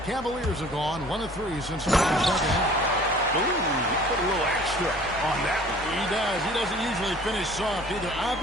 Cavaliers have gone 1 of 3 since the second half. Ooh, he put a little extra on that one. He does. He doesn't usually finish soft either.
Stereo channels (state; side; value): normal; both; correlation 0.50